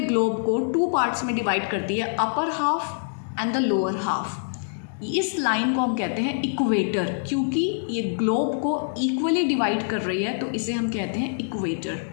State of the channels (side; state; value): right; silent; digital silence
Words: को 2 पार्ट्स में डिवाइड करती है, upper half and the lower half. इस लाइन को हम कहते हैं इक्वेटर, क्योंकि ये ग्लोब को इक्वली डिवाइड कर रही है तो इसे हम कहते हैं इक्वेटर.